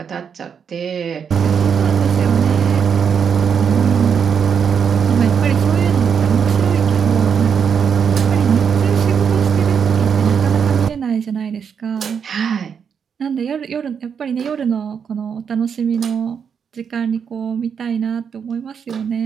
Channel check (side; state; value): left; quieter; 7.0 dB